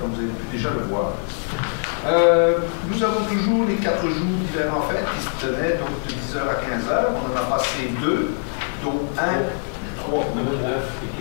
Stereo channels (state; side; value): silent; right; 63 dB below the other